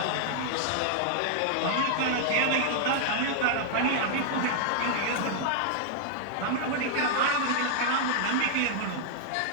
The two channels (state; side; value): different; both; correlation -0.01